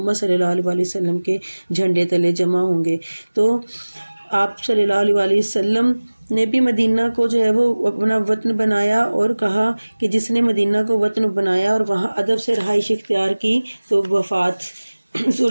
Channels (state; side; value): inverted; both; correlation -1.00